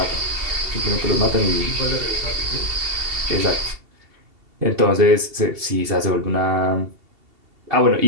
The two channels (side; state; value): left; late; 2.7 ms